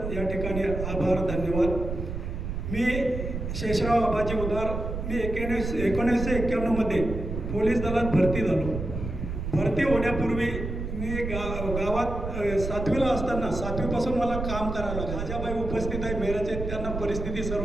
या ठिकाणी आभार धन्यवाद। मी शेषराव आबाजी उदार, मी 1991 पोलीस दलात भरती झालो। भरती होण्यापूर्वी मी गावात 7वीला असताना 7वीपासून मला काम करायला लागलं। राजाबाई उपस्थित आहे मेराचे, त्यांना परिस्थिती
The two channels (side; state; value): right; noise; rumble, 5 dB below the sound